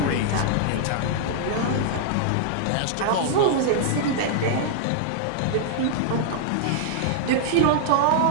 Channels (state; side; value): different; both; correlation -0.01